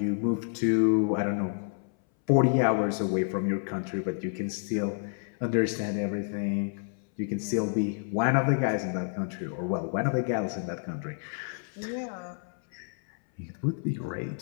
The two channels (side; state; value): right; silent; 58 dB below the other